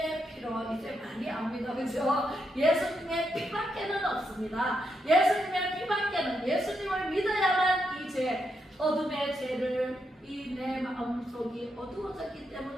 피로. 이제 많이 압니다. 그죠? 예수님의 피밖에는 없습니다. 예수님의 피밖에는, 예수님을 믿어야만 이 죄, 어둠의 죄를 이 내 마음속이 어두워졌기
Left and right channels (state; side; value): normal; both; correlation 0.81